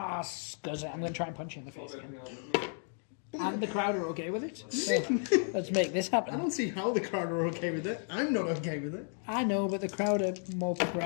scuzz it. I'm going to try and punch you in the face again. And the crowd are okay with it. So let's make this I happen. don't see how the crowd are okay with it. I'm not okay with it. I know, but the crowd are more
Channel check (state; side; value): silent; right; 56 dB below the other